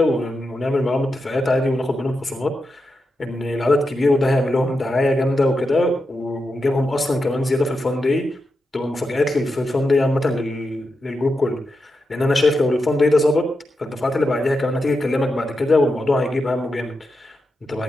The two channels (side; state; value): both; normal; correlation 0.87